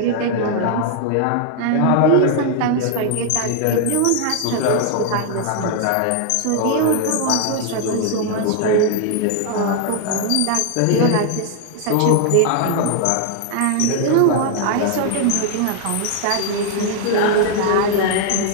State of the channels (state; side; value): different; both; correlation 0.00